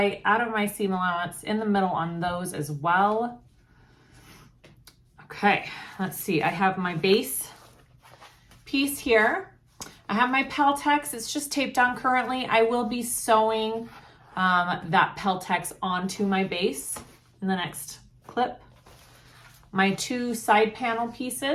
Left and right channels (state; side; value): identical; both; correlation 1.00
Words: out of my seam allowance in the middle on those as well. Okay, let's see. I have my base piece here. I have my Peltex. It's just taped on currently. I will be sewing that Peltex onto my base in the next clip. My 2 side panel